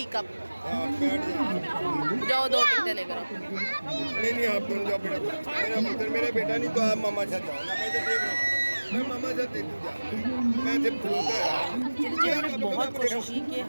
कप। जाओ 2 टिकटें लेकर। नहीं आप दोनों जाओ बेटा, मेरा पुत्र मेरा बेटा नहीं तो आप मामा साथ जाओ ना, मैं तो देख रहा हूँ, मैं मामा साथ देख जा, मैं जब चलिए हमने बहुत कोशिश की कि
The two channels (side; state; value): both; inverted; correlation -1.00